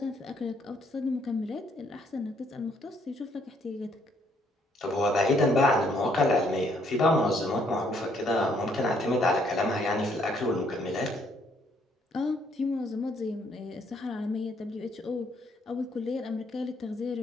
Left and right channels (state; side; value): normal; both; correlation 0.68